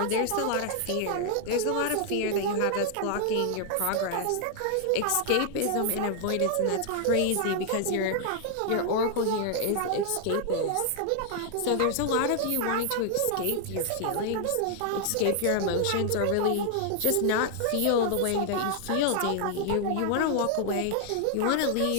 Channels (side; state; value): both; different; correlation 0.00